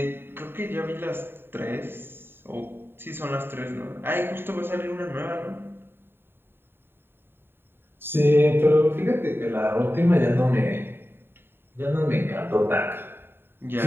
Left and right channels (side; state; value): left; late; 0.11 ms